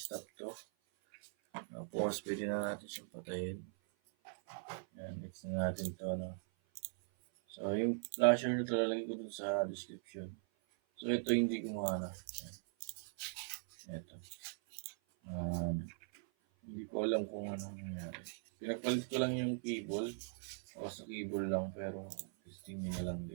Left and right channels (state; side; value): silent; left; 51 dB below the other